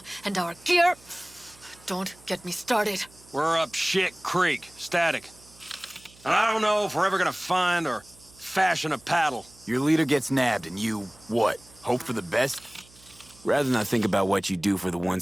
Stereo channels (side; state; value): right; noise; hum, 26 dB below the sound